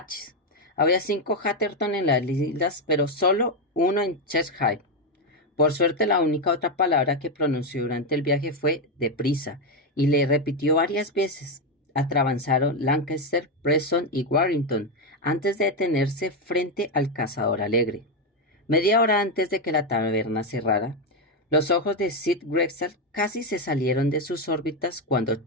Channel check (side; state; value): both; normal; correlation 0.06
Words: Había 5 Hatterton en las islas, pero solo uno en Cheshire. Por suerte, la única otra palabra que pronunció durante el viaje fue deprisa, y le repitió varias veces. Atravesaron Lancaster, Preston y Warrington antes de detenerse frente al Cazador Alegre. Media hora antes de que la taberna cerrara, los ojos de Sid Grexar casi se salieron de sus órbitas cuando